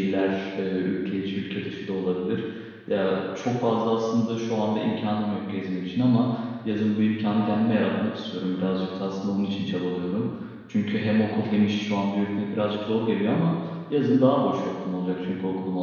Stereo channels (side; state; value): both; identical; correlation 1.00